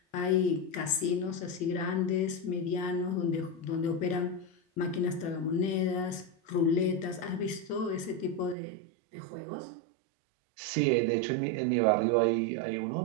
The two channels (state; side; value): drops out; left; at 8.6 s